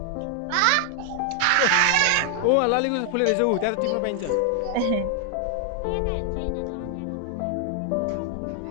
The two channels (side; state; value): both; different; correlation 0.00